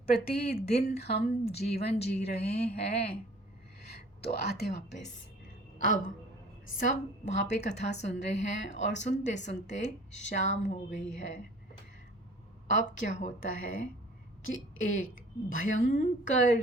हम जीवन जी रहे हैं। तो आते वापस, अब सब वहाँ पे कथा सुन रहे हैं और सुनते सुनते शाम हो गई है। अब क्या होता है कि एक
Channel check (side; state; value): both; normal; correlation 0.49